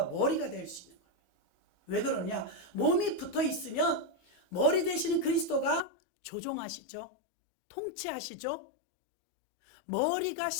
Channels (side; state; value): right; drops out; at 5.8 s